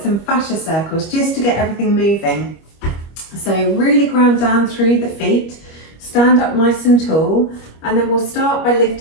some fascia circles just to get everything moving. So really ground down through the feet, stand up nice and tall, and then we'll start by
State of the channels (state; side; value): late; right; 25 ms